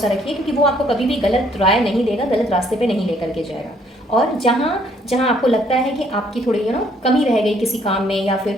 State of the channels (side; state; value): both; normal; correlation 0.65